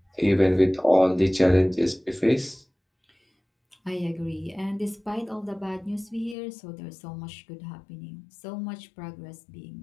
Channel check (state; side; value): drops out; right; at 6.4 s